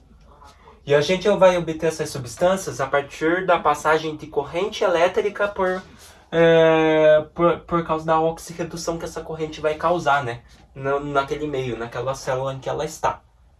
E a gente vai obter essas substâncias a partir da passagem de corrente elétrica por causa da oxirredução que essa corrente vai causar, né? Naquele meio, naquela célula em que ela está.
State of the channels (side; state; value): both; identical; correlation 1.00